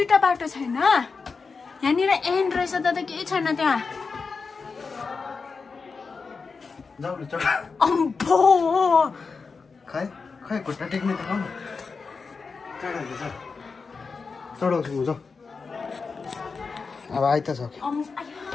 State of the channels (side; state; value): right; quieter; 4.8 dB